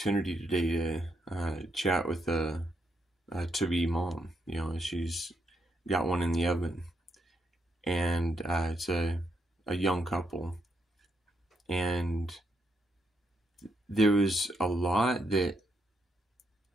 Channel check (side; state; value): both; normal; correlation 0.79